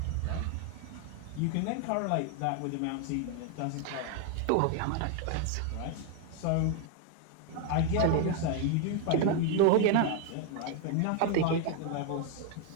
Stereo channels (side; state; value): both; different; correlation 0.01